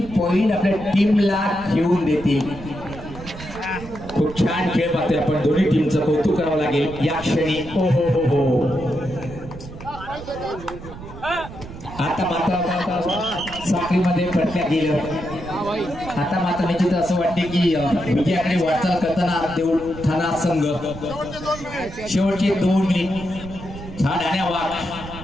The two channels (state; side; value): noise; right; rumble, 13 dB below the sound